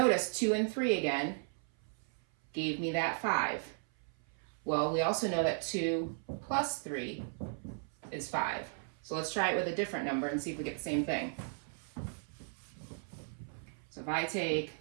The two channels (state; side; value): silent; left; 54 dB below the other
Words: 2 and 3 again gave me that 5. Well, we also know that 2 plus 3 is 5. So let's try it with a different number and see if we get the same thing. So if I take